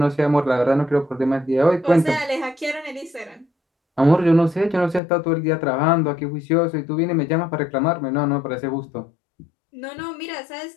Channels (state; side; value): drops out; right; at 5.0 s